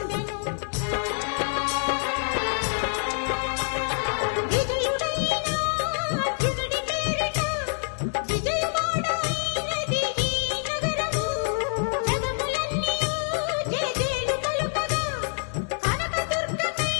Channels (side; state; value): right; silent; digital silence